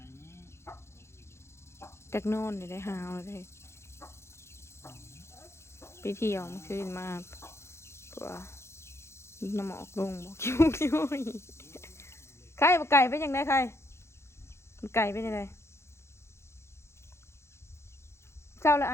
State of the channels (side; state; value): right; late; 0.13 ms